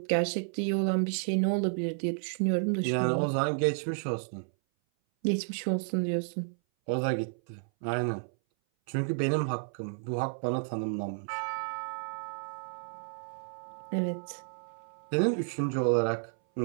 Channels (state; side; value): silent; left; 57 dB below the other